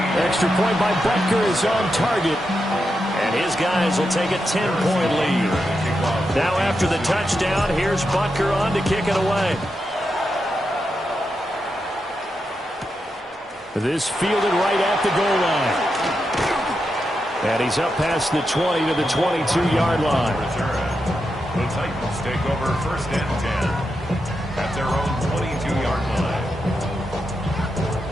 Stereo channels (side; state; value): both; normal; correlation 0.86